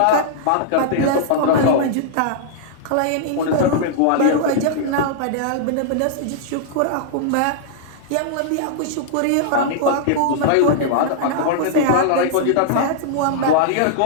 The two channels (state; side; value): different; both; correlation -0.01